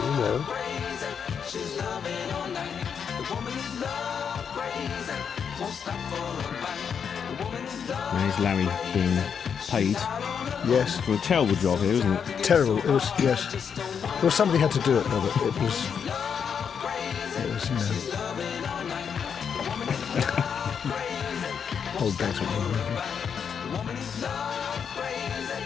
know. There's Larry being paid Yes. for a terrible job here, isn't it? Terrible. It was, yes. Well, somebody had to do it, Robert. It was, you know. Old days with me.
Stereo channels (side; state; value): right; quieter; 7.1 dB